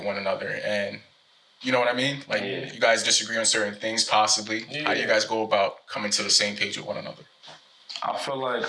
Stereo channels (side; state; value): both; identical; correlation 1.00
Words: one another? And you know what I mean? Like, you guys disagree on certain things, possibly. How do you guys go about coming to the same page with one another? I feel like